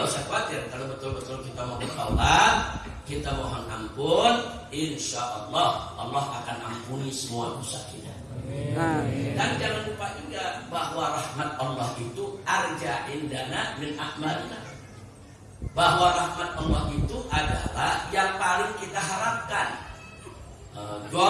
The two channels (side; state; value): both; identical; correlation 1.00